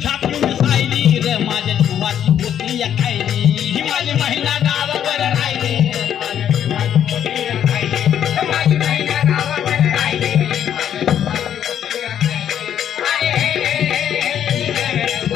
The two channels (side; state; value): right; quieter; 9.7 dB